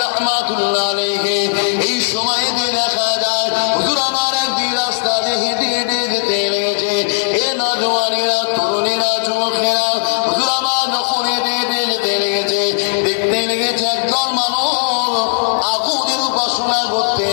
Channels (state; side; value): silent; right; 61 dB below the other